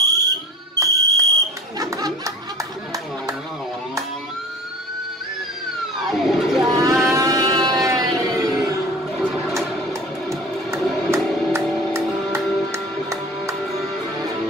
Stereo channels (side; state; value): both; normal; correlation 0.41